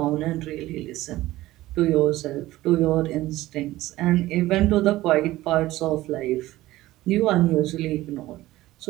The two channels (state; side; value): quieter; left; 16.8 dB